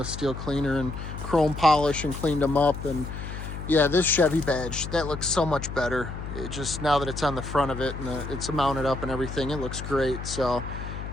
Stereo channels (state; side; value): noise; left; hum, 8 dB below the sound